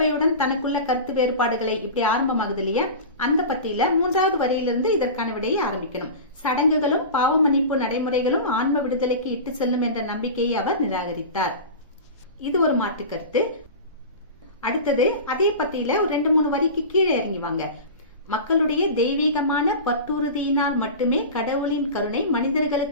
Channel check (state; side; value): inverted; both; correlation -0.30